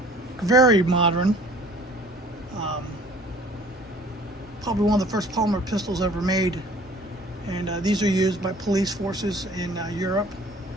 very modern, probably one of the first polymer pistols ever made. And these are used by police forces in Europe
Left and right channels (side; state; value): both; normal; correlation 0.51